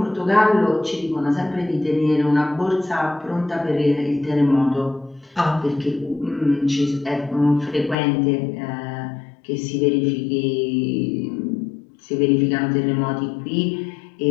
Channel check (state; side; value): drops out; right; at 8.0 s